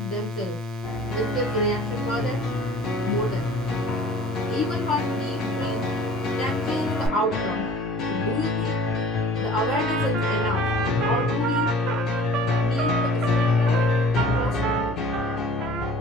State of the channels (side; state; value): both; normal; correlation 0.47